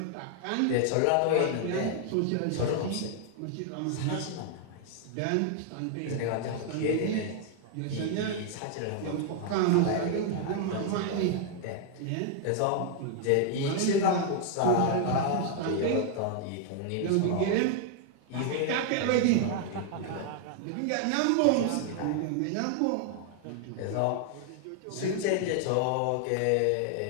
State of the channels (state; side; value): different; both; correlation 0.00